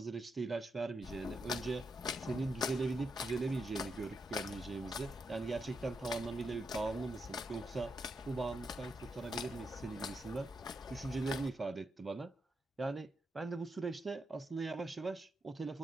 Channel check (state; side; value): normal; both; correlation 0.83